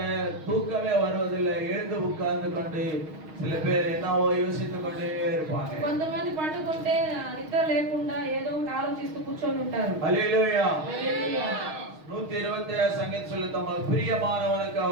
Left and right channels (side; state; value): left; late; 6.4 ms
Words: தூக்கமே வருவதில்லை. எழுந்து உட்கார்ந்து கொண்டு சில பேர் என்னவோ யோசித்துக் கொண்டே இருப்பாங்க. కొంతమంది పండుకుంటే నిద్ర లేకుండా ఏదో ఒకటి ఆలోచిస్తూ కూర్చొని ఉంటారు. ஹalleluya. హల్లెలూయా. 127 சங்கீதம் சொல்லு, தமக்கு பிரியமானவனுக்கு